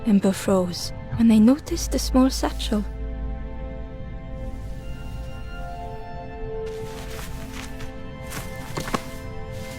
Ember froze when they noticed a small satchel.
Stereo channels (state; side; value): identical; both; correlation 1.00